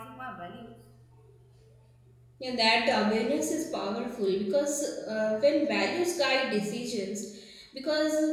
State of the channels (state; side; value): identical; both; correlation 1.00